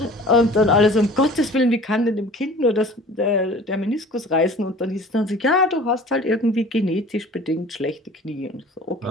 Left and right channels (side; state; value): both; normal; correlation 0.45